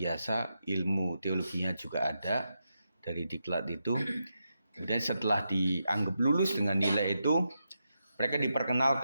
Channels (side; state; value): both; inverted; correlation -0.86